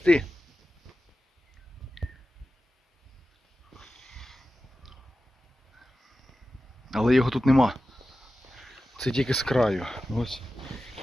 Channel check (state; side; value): normal; both; correlation 0.94